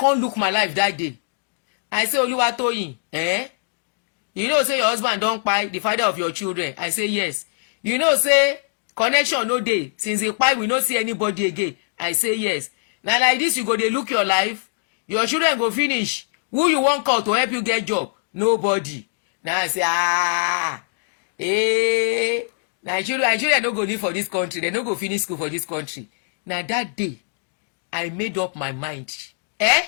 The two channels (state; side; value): silent; right; digital silence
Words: look my life that day. I say Oluwatoyin, you know say your husband don't buy the father of your children. I say yes. You know say connection no day since he buy we no see anybody again. I say yes. Now like this you go dey look your life. Your children go finish. Who you want call to help you get job? Nobody. Now I say Nigeria no go live for this country. They no go finish school for this country. Now that day, I made up my mind.